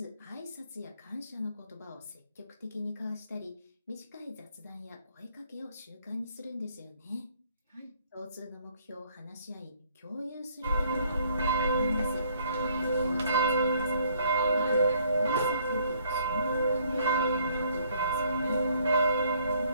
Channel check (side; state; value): both; inverted; correlation -0.64